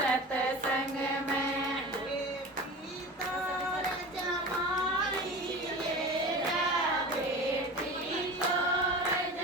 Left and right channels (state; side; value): normal; both; correlation 0.33